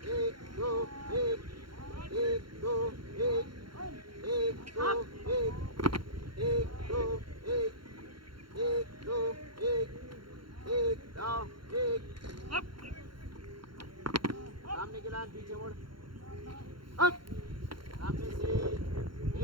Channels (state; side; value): late; left; 0.73 ms